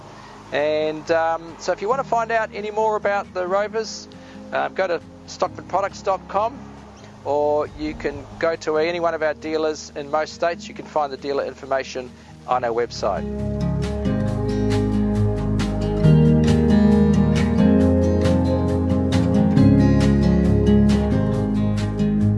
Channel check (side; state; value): both; identical; correlation 1.00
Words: And so if you want to find out any more about the Rovers, go to stockmanproducts.com, or you can go to any one of our dealers in most states. You can find the dealer information on our website.